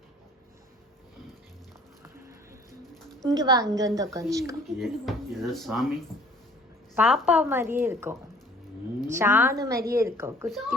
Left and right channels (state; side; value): normal; both; correlation 0.53